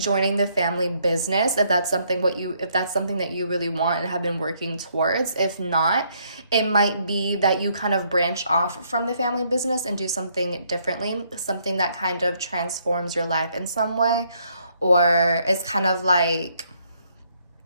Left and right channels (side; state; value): both; inverted; correlation -0.70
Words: the family business if that's something that you really want and have been working towards. If not, it might be that you kind of branch off from the family business and do something differently, something that kind of transforms your life in some way, or it's kind of like,